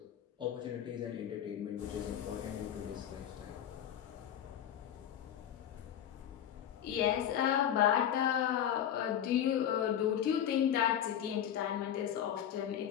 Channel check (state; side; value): quieter; right; 10.0 dB